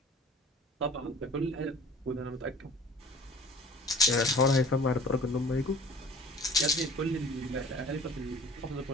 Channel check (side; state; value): both; normal; correlation 0.46